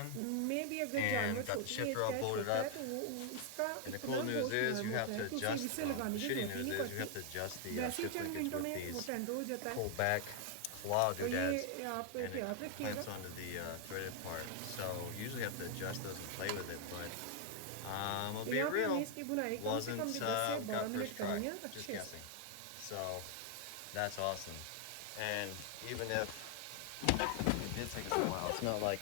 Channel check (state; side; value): different; both; correlation 0.00